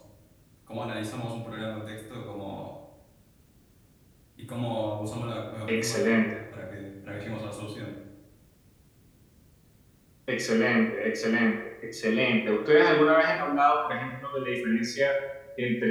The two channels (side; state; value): both; identical; correlation 1.00